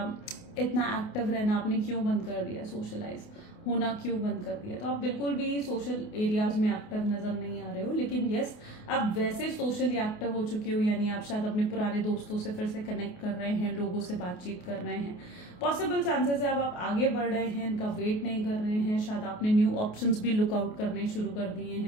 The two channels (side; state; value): right; late; 28 ms